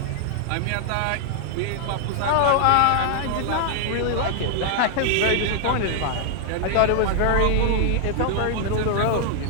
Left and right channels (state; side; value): different; both; correlation 0.00